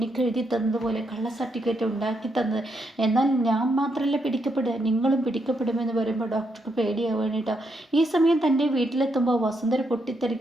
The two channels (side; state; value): both; normal; correlation 0.79